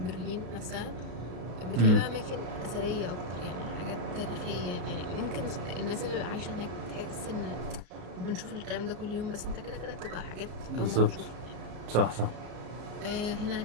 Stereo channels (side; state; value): left; late; 33 ms